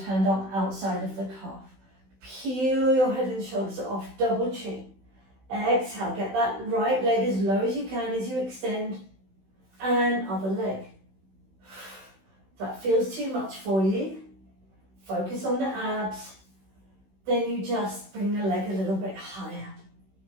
hand on outside of the calf. Peel your head and shoulders off, double chin. Exhale, get that right leg as low as you can as you extend, and other leg. If that feels too much for you, focus on the abs, then you just bring the leg a little bit higher.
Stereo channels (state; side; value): late; left; 16 ms